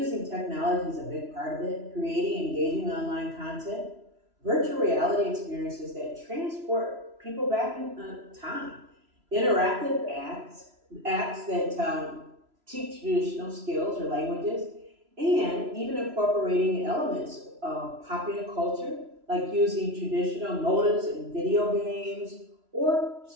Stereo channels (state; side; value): late; left; 3.0 ms